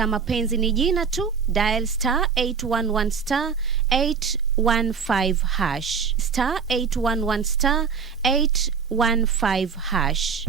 mapenzi ni jina tu, dial *811*815#. *811*815#.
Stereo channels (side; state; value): left; quieter; 6.0 dB